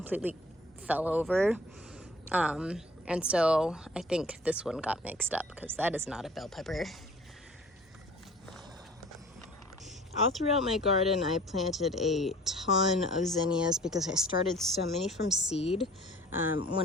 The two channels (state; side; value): normal; both; correlation 0.49